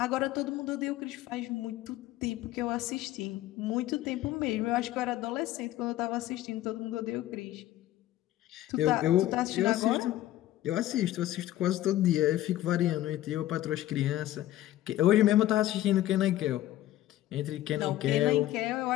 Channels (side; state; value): right; quieter; 14.4 dB